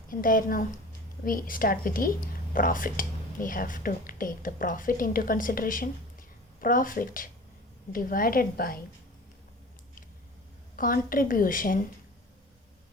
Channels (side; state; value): both; normal; correlation 0.40